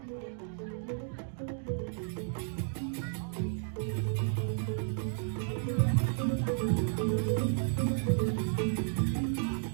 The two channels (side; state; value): left; silent; 56 dB below the other